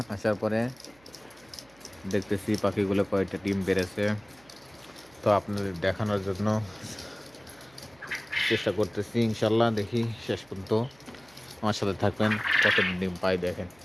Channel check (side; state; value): right; noise; hum, 29 dB below the sound